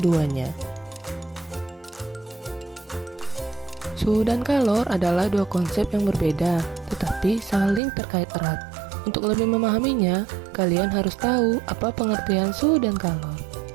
Suhu dan kalor adalah dua konsep yang berbeda, tetapi saling terkait erat. Untuk lebih memahaminya, kalian harus tahu apa pengertian suhu dan kalor.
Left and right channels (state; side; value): drops out; left; at 7.8 s